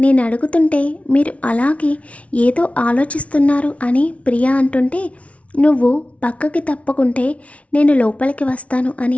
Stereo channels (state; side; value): late; right; 0.064 ms